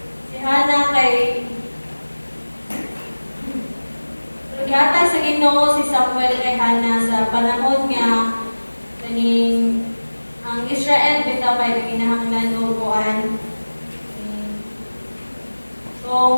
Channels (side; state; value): both; inverted; correlation -1.00